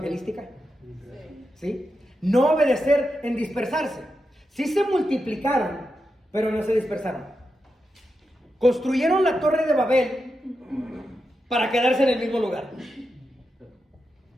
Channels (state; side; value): normal; both; correlation 0.88